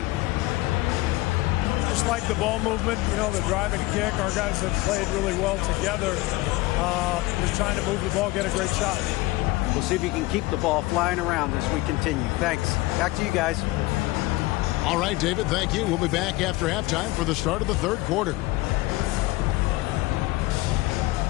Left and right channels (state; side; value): quieter; right; 20.1 dB